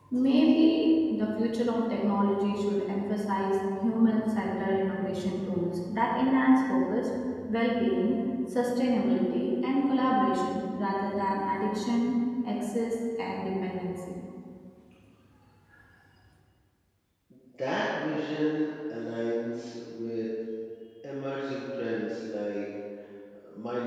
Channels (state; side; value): identical; both; correlation 1.00